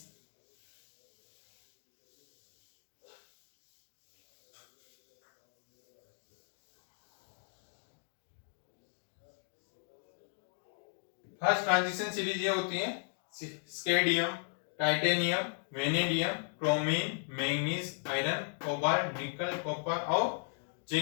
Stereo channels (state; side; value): silent; right; digital silence